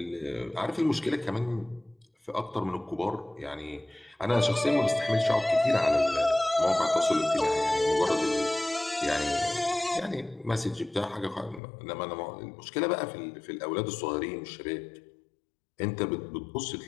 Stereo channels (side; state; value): right; drops out; at 11.6 s